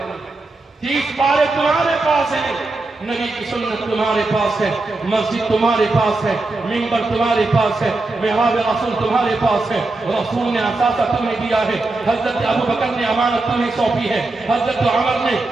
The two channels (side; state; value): left; quieter; 3.2 dB